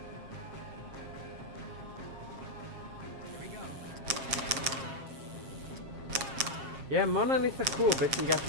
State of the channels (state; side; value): late; left; 7.4 ms